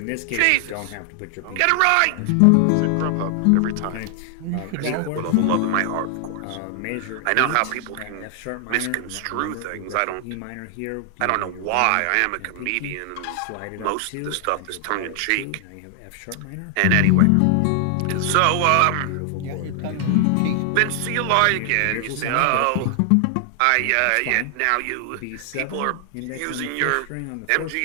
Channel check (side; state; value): both; different; correlation 0.00